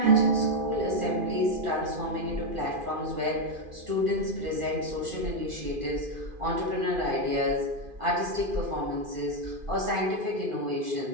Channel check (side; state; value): left; late; 2.5 ms